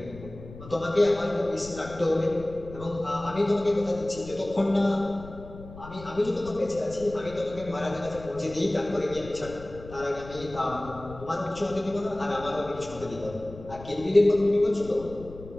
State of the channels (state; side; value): noise; left; rumble, 15 dB below the sound